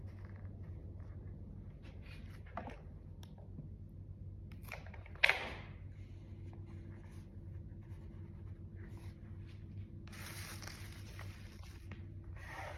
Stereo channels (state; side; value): identical; both; correlation 1.00